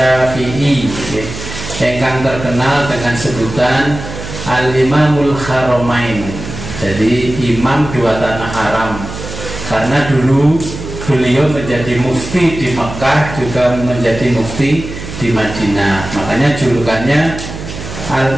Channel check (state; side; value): noise; right; hum, 10 dB below the sound